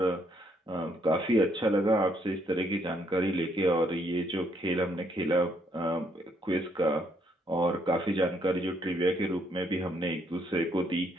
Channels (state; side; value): normal; both; correlation 0.71